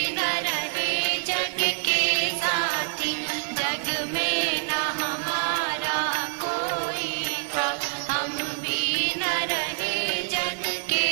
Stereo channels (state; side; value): silent; left; digital silence